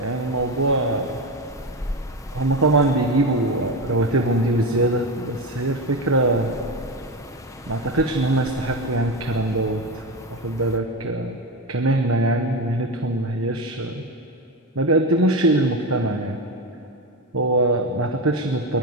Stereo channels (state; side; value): normal; both; correlation 0.18